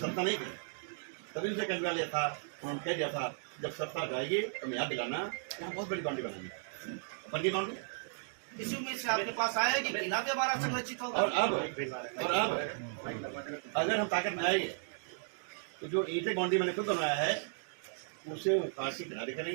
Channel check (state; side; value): silent; left; digital silence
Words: नहीं थी, तभी उसे कहने लिया था, उन्होंने कह दिया था जब सत्ता जाएगी तो मैं याद दिलाना, यहाँ बहुत बड़ी बाउंड्री बनानी। बन गई बाउंड्री, इसी उम्मीद से आपके पास आया कि किला भी हमारा संरक्षित होगा। और अब अगर हम ताकत में आएंगे तो जो ईंटें बाउंड्री मैंने खुद बनाया है उसे उखाड़ के किनारे